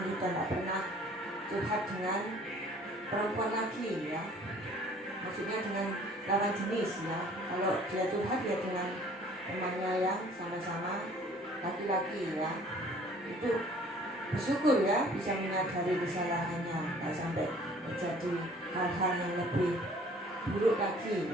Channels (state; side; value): normal; both; correlation 0.53